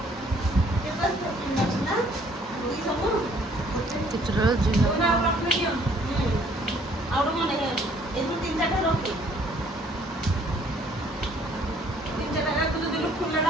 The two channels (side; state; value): both; normal; correlation 0.61